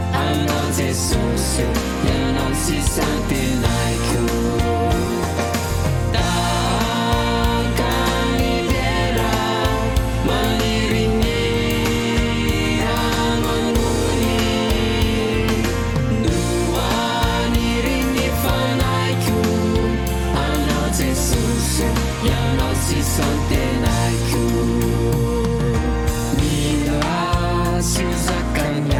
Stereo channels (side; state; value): both; identical; correlation 1.00